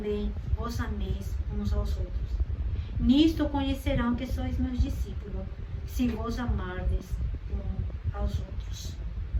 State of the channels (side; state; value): both; identical; correlation 1.00